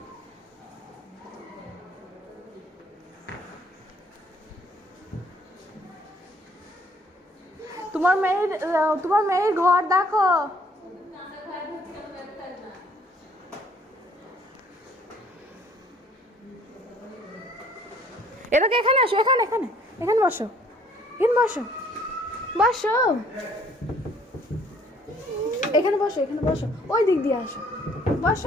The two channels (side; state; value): both; normal; correlation 0.60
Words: তোমার মেয়ের ঘর দেখো। এটাকে এখানে আসো, এখানে এখানে এখানে বসো, এখানে বসো বসো, এখানে বসো, এখানে বসো, ওই দিক দিয়ে আসো,